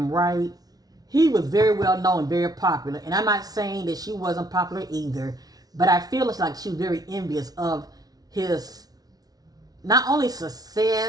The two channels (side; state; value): left; late; 0.19 ms